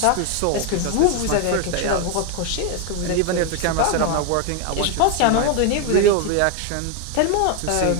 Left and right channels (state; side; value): different; both; correlation 0.01